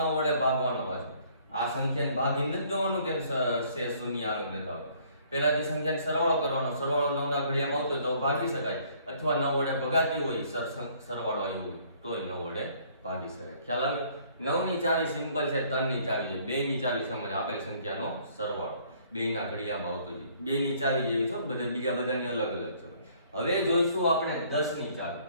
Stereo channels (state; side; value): inverted; both; correlation -0.60